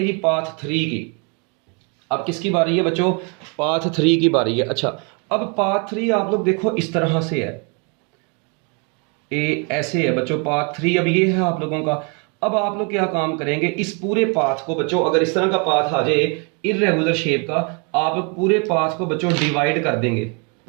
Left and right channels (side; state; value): left; quieter; 35.1 dB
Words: जी पाथ 3 की। अब किसकी बारी है बच्चों, पाथ 3 की बारी है। अच्छा अब पाथ 3 आप लोग देखो इस तरह से है, ऐसे है बच्चों पाथ 3, अब ये है आप लोगों का। अब आप लोग क्या काम करेंगे, इस पूरे पाथ को बच्चों, अगर इस तरह का पाथ आ जाए इररेगुलर शेप का, आप लोग पूरे पाथ को बच्चों डिवाइड कर देंगे,